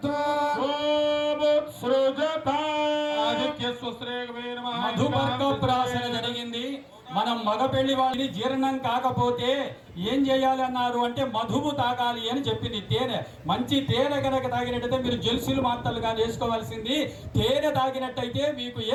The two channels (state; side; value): identical; both; correlation 1.00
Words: మధుపర్కప్రాసన జరిగింది. మనం మగ పెళ్లి వాళ్ళని జీర్ణం కాకపోతే ఏం చేయాలి అన్నారు అంటే మధువు తాగాలి అని చెప్పింది. తేనె, మంచి తేనె కనుక తాగినట్టయితే మీరు జెల్సులు మాత్రలుగా వేసుకోవాల్సింది. తేనె తాగినట్టయితే మీకు ఏ